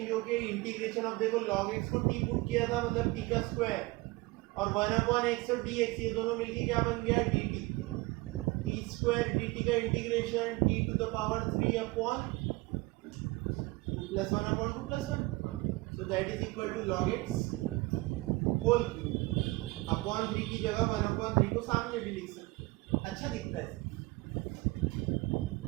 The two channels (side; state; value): left; quieter; 22.2 dB